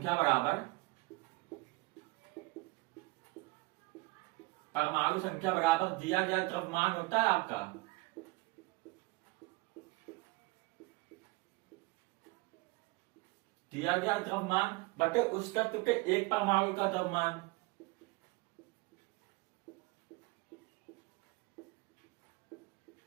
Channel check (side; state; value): left; quieter; 24.7 dB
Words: बराबर दिया गया द्रव्यमान होता है आपका, दिया गया द्रव्यमान बटे उस तत्व के एक परमाणु का द्रव्यमान।